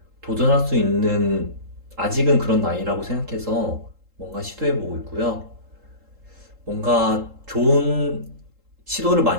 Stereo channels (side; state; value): left; late; 3.7 ms